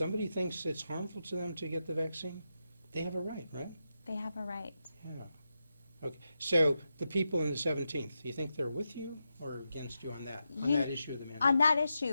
thinks it's harmful to them to get the vaccine, they have a right, right? They have a right. Yeah. Okay. So the people in the 17th, do you think they're with you or against you on that issue of the mandate? On that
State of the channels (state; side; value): inverted; both; correlation -0.88